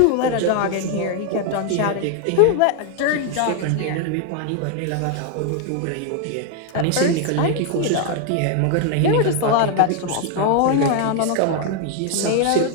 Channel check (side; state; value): both; different; correlation 0.01